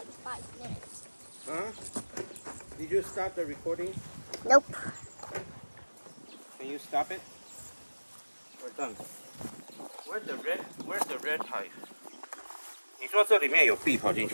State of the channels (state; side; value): inverted; both; correlation -1.00